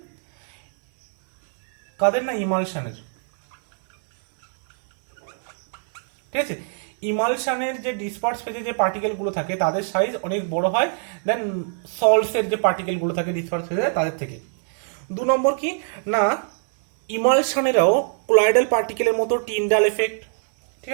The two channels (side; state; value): left; silent; digital silence